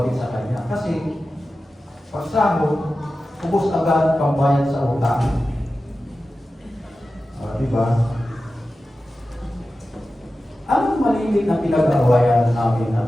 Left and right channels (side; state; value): both; normal; correlation 0.94